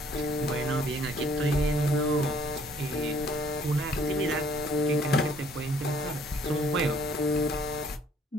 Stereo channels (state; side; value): normal; both; correlation 0.61